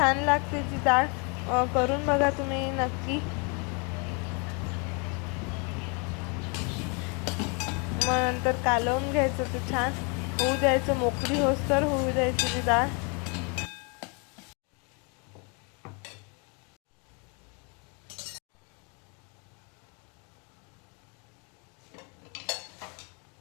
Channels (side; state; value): right; quieter; 33.8 dB